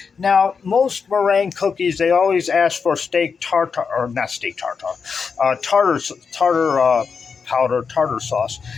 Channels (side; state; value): right; quieter; 5.6 dB